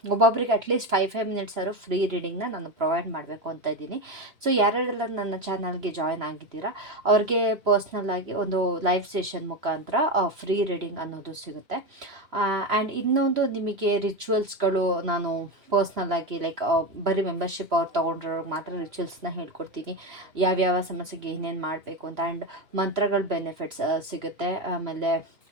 ಒಬ್ಬೊಬ್ಬರಿಗೆ ಅಟ್ಲೀಸ್ಟ್ 5 ಮಿನಿಟ್ಸ್ ಆದರೂ ಫ್ರೀ ರೀಡಿಂಗ್ನ ನಾನು ಪ್ರೊವೈಡ್ ಮಾಡಬೇಕು ಅಂತ ಇದ್ದೀನಿ. ಸೊ ಯಾರ್ಯಾರೆಲ್ಲ ನನ್ನ ಚಾನಲ್ಗೆ ಜಾಯ್ನ್ ಆಗಿದ್ದೀರಾ ಅವ್ರಿಗೆ ಪರ್ಸ್ನಲ್ ಆಗಿ ಒಂದು ಲೈವ್ ಸೆಷನ್ ಮುಖಾಂತರ ಫ್ರೀ ರೀಡಿಂಗ್ ಅನ್ನೋದು ಸಿಗುತ್ತೆ. ಆ್ಯಂಡ್ ಇನ್ನೊಂದು ನಿಮಗೆ ರಿಚುವಲ್ಸ್ಗಳು ನಾನು ಪರ್ಸ್ನಲ್ ಆಗಿ ಲೈಕ್ ಬರೀ ಮೆಂಬರ್ಶಿಪ್ ಅವ್ರು ತೊಗೊಂಡ್ರವ್ರಿಗೆ ಮಾತ್ರ ರಿಚುವಲ್ಸ್ನ ಹೇಳ್ಕೊಡ್ತೀನಿ, ಯಾವ್ಯಾವ ಸಮಸ್ಯೆಗೆ ಏನೇನು ಮಾಡಬೇಕು ಅಂತ. ಆ್ಯಂಡ್ ಮಂತ್ರಗಳ ಬೆನಿಫಿಟ್ಸ್ ಸಿಗುತ್ತೆ. ಆಮೇಲೆ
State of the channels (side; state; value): left; late; 3.0 ms